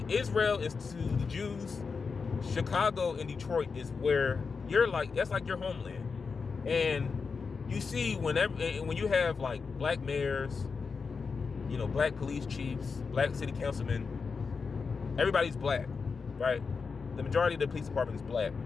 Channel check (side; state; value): right; quieter; 5.1 dB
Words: Israel is to the Jews. Chicago and Detroit is where that's like your homeland. And you see when you have like black mayors, black police chiefs, black city councilmen, everybody's black, right? The majority of the police department is black.